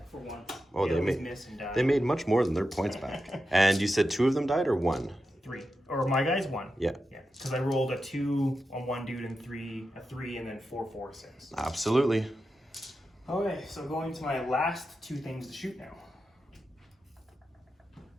for once. Oh, they made much more than their points back. And you said 2 of them died or 1? 3. Or my guy's 1. Yeah. Yeah. Because I rolled a 2 on 1 dude and a 3, and then 4, 4, 6. Absolutely. Okay, so going to my last 2 things to shoot now.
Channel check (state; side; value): normal; both; correlation 0.90